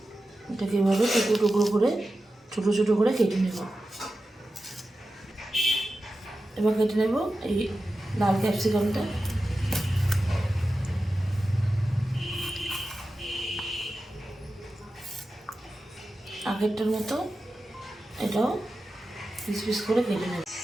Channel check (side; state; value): both; normal; correlation 0.93